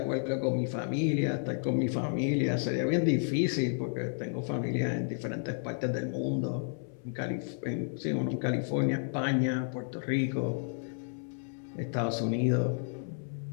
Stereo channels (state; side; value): silent; right; 57 dB below the other